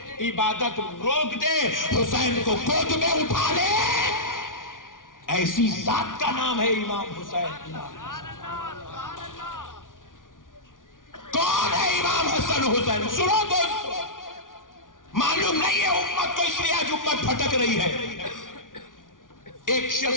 عبادت روک دے, حسین کو گود میں اٹھا لے, ایسی ذات کا نام ہے امام حسین. کون ہے امام حسن حسین؟ سنو دوستو, معلوم نہیں ہے امت کو, اس لیے آج امت بھٹک رہی ہے. ایک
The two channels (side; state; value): right; late; 0.88 ms